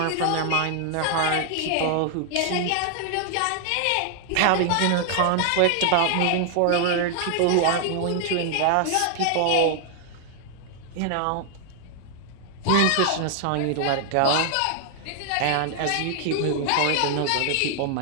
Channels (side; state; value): both; different; correlation 0.00